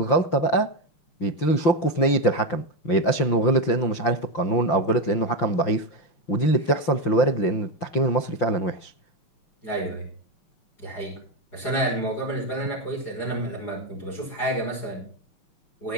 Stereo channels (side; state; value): right; late; 5.8 ms